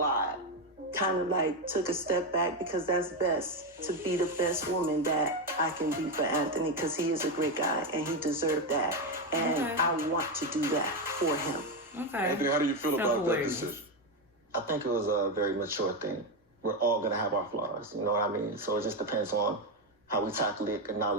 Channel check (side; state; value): both; normal; correlation 0.09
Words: Kind of like took a step back because that's best, to be the best woman that I can be for Anthony, because he is a great guy and he deserved that. And I want to do that for him. Okay. Anthony, how do you feel about that decision? I think it was a very mature thing. We're all going to have our flaws, you know what I mean? So it just depends on how we tackle it,